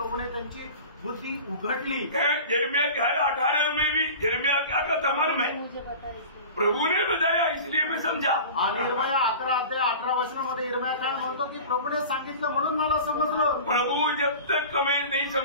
त्यांची बुद्धि उघडली. यिर्मयाह 18 में भी यिर्मयाह क्या कहता मालूम है? मुझे बता प्रभु ने बताया इसलिए मैं समझा. आणि यिर्मयाह 11 अध्याय 18 वचनामध्ये यिर्मयाह काय म्हणतो की प्रभूने सांगितलं म्हणून मला समजलं. प्रभु जब तक हमें नहीं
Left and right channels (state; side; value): inverted; both; correlation -0.37